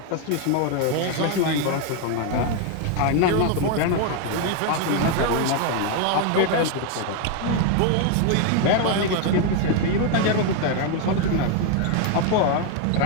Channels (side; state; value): both; different; correlation 0.01